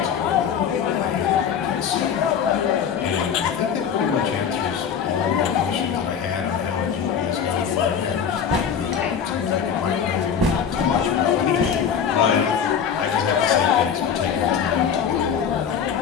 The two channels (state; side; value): quieter; right; 7.5 dB